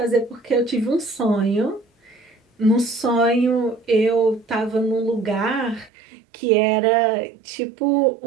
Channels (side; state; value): left; drops out; at 5.9 s